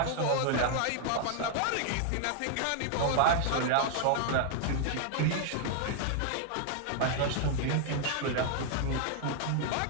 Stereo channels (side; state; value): both; different; correlation 0.00